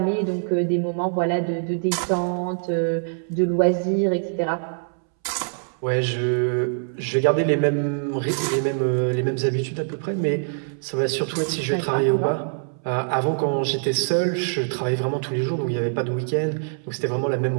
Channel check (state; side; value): silent; left; 63 dB below the other